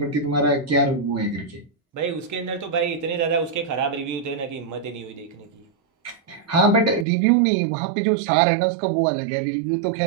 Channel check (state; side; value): drops out; left; at 7.1 s